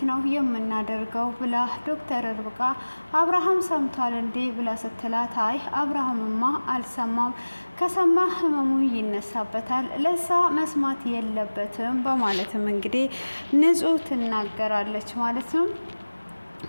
ነው የምናደርገው ብላ ዶክተር ርብቃ አብርሃም ሰምቷል እንዴ ብላ ስትላት አይ አብርሃምማ አልሰማም፣ ከሰማ ህመሙ ይነሳበታል፣ ለሳ መስማት የለበትም በማለትም እንግዲህ ንጹህ ትናገራለች ማለት ነው።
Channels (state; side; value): inverted; both; correlation -1.00